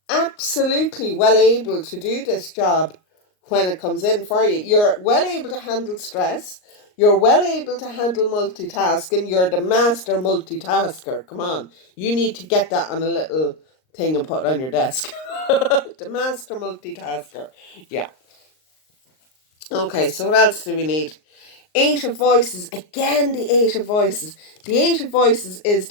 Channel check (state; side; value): late; right; 38 ms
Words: absolutely well able to do this job when it comes in for you. You're well able to handle stress. You're well able to handle multitasking. You're the master multitasker. Come on. You need to get that on a little thing and put it on your desk. The master multitasker. Yeah. Okay, so what else do we need? Eight of voices. Again, the eight of voices. The eight of voices is